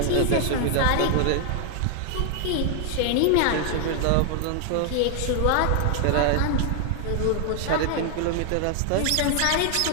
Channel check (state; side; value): different; both; correlation 0.00